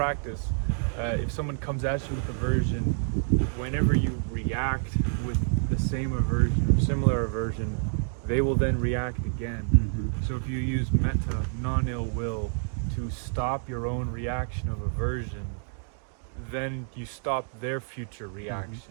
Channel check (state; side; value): silent; left; 59 dB below the other